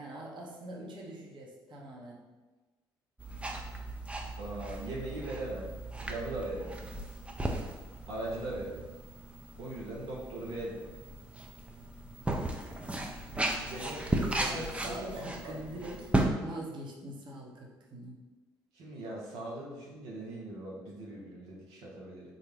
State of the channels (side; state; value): both; normal; correlation 0.66